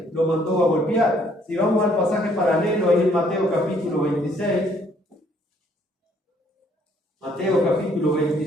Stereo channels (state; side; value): normal; both; correlation 0.65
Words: lo mandó a golpear. Si vamos al pasaje paralelo ahí en Mateo capítulo 26, Mateo capítulo